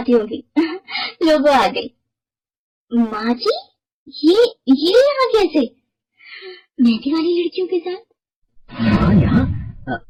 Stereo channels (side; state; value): both; identical; correlation 1.00